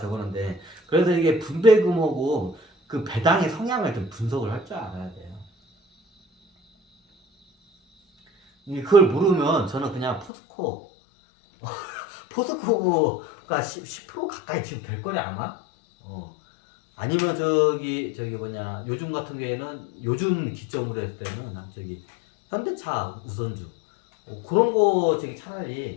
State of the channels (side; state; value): right; drops out; at 10.3 s